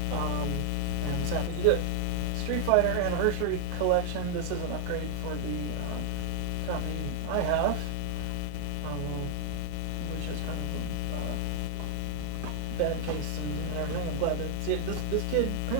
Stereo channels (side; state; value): both; different; correlation 0.00